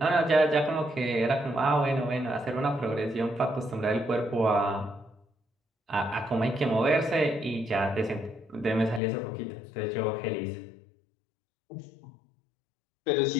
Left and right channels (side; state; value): right; drops out; at 9.0 s